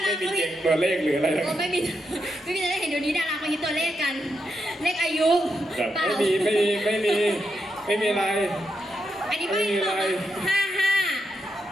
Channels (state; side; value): normal; both; correlation 0.83